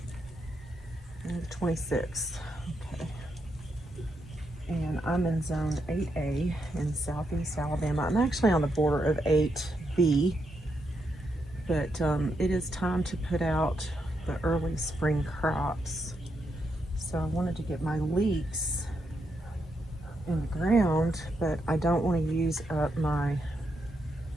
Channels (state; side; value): normal; both; correlation 0.81